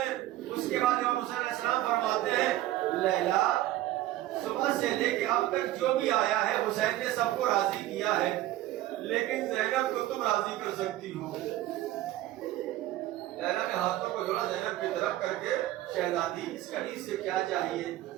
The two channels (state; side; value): quieter; left; 15.0 dB